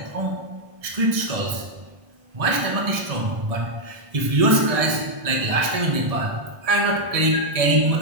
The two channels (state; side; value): late; left; 1.7 ms